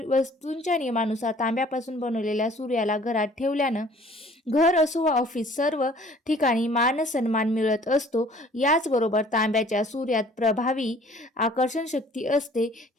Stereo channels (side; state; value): both; normal; correlation 0.53